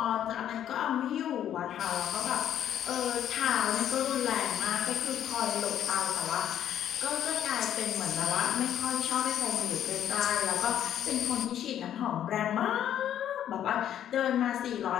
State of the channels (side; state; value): right; quieter; 10.5 dB